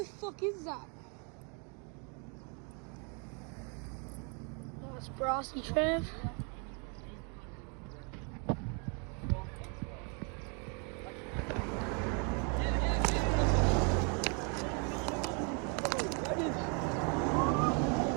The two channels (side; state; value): left; quieter; 36.9 dB